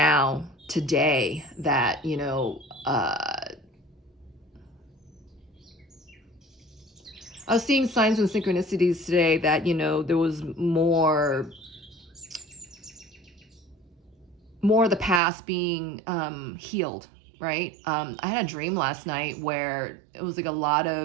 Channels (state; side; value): drops out; left; at 15.2 s